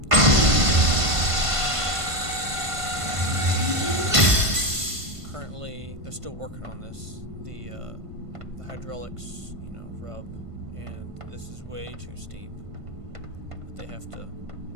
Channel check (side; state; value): left; late; 1.5 ms